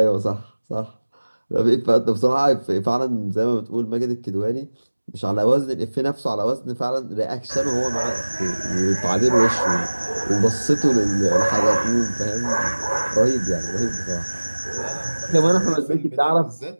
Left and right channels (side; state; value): both; inverted; correlation -1.00